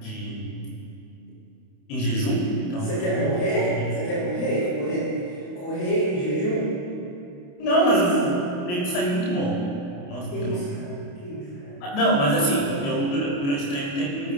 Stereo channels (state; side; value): late; right; 28 ms